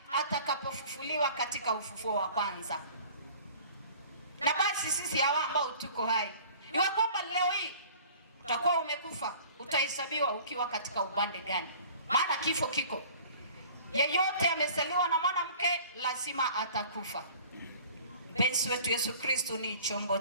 atakapofufuliwa katika ufufuo wa kwanza. Na basi sisi hawa ambao tuko hai, iwe kwamba leo hii utakuwa umekufa, utahesabiwa ukiwa katika upande gani, maana kifo kiko. Yeyote amezaliwa na mwanamke lazima atakufa. Mpenzi wetu Yesu Kristo ni chombo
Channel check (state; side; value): inverted; both; correlation -0.47